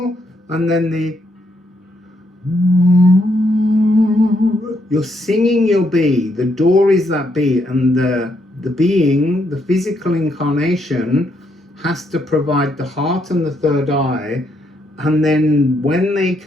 and then the You're singing your bee. The door is that bee, and the being, the physical incarnation, has to provide the heart and the third eye. And then when they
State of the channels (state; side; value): normal; both; correlation 0.76